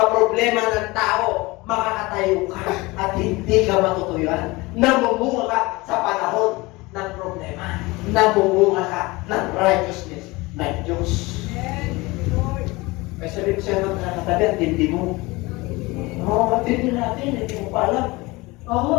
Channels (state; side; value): quieter; right; 22.8 dB